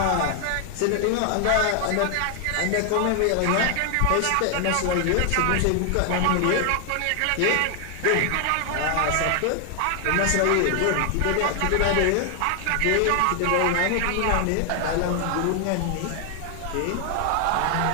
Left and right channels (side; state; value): both; different; correlation 0.00